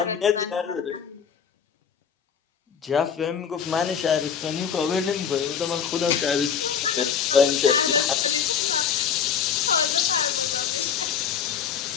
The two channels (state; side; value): quieter; right; 7.5 dB